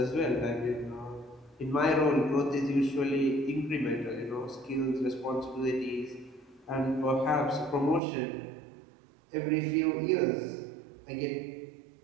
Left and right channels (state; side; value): drops out; left; at 8.0 s